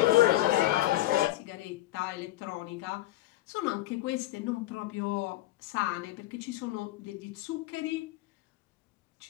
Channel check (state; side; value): quieter; right; 16.6 dB